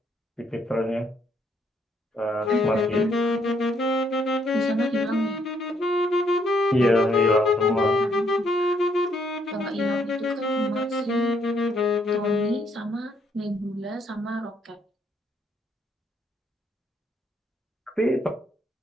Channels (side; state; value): both; normal; correlation 0.70